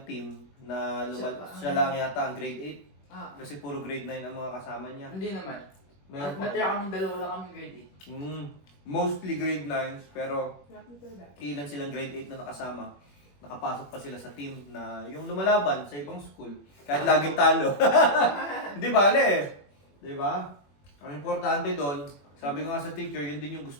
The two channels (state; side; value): late; right; 21 ms